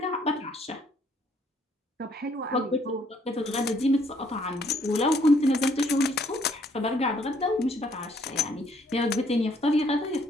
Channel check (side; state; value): both; normal; correlation 0.66